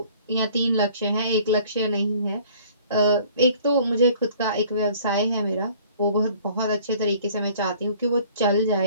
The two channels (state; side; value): inverted; both; correlation -0.54